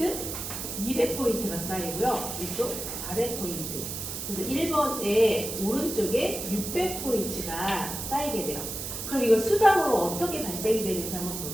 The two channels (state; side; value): noise; right; hiss, 6 dB below the sound